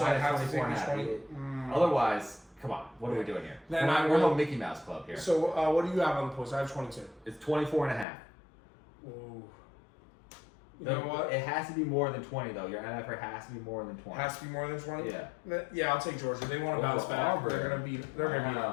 I have to take 24.5. the 20. Otherwise, come on. What are we doing here? Then we're no Mickey Mouse Club here. So, what do you have on the post? I have 22. It's 24.5. Ooh. You know what? It has to be more than 20 though. Your MFR has to be more than 20. Has to be more than 20. Yeah. Yeah, I'll take Georgia. They want to bounce back. Auburn. They're gonna beat. They're gonna beat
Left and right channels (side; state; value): right; drops out; at 8.1 s